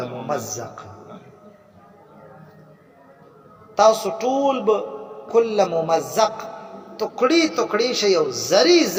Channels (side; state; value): both; identical; correlation 1.00